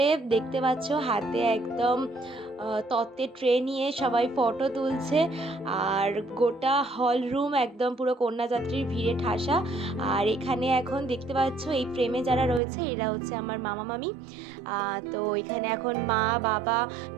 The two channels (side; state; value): left; drops out; at 12.6 s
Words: দেখতে পাচ্ছ হাতে একদম তত্ত্বের ট্রে নিয়ে সবাই ফটো তুলছে। আর গোটা হল রুম একদম পুরো কন্যাযাত্রীর ভিড়ে ঠাসা। আর এখানে এখন দেখতে পাচ্ছ এই ফ্রেমে যারা রয়েছে এরা হচ্ছে আমার মামা মামি। তো এখানে এখন মা বাবা